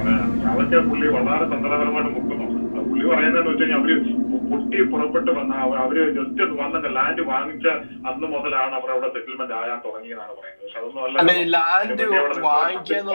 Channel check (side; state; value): both; inverted; correlation -1.00